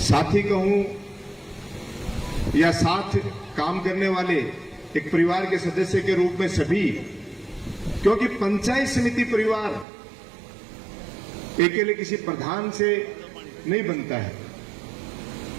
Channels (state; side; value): drops out; left; at 9.9 s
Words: साथी कहूं या साथ काम करने वाले एक परिवार के सदस्य के रूप में सभी, क्योंकि पंचायत समिति परिवार अकेले किसी प्रधान से नहीं बनता है।